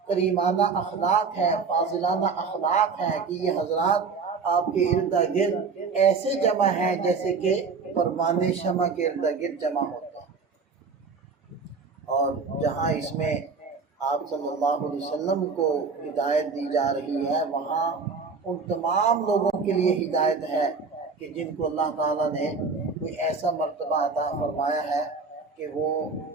کریمانہ اخلاق ہے، فاضلانہ اخلاق ہے کہ یہ حضرات آپ کے ارد گرد ایسے جمع ہیں جیسے کہ پروانہ شمع کے ارد گرد جمع ہوتا ہے۔ اور جہاں اس میں آپ صلی اللہ علیہ وسلم کو ہدایت دی جا رہی ہے، وہاں ان تمام لوگوں کے لیے ہدایت ہے کہ جن کو اللہ تعالیٰ نے کوئی ایسا مرتبہ عطا فرمایا ہے کہ وہ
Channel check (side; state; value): left; quieter; 4.9 dB